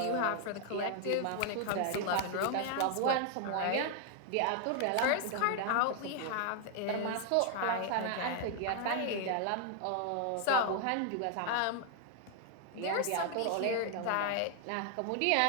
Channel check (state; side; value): different; both; correlation 0.00